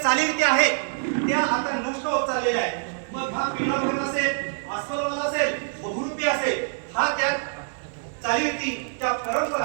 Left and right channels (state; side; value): silent; left; digital silence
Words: चालीरीती आहेत त्या आता नष्ट होत चाललेल्या आहेत. मग हा पिंगळा भगत असेल, अस्वलवाला असेल, बहुरूपी असेल, हा त्या चालीरीती त्या